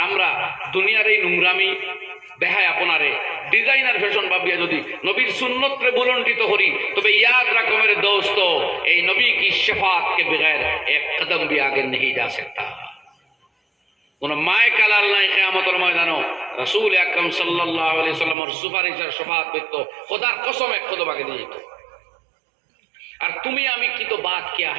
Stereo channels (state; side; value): drops out; left; at 18.4 s